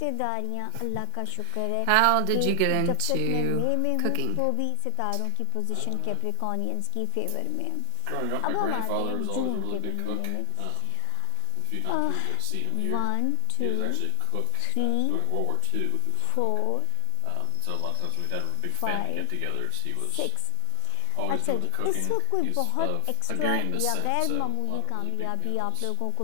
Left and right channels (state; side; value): different; both; correlation 0.00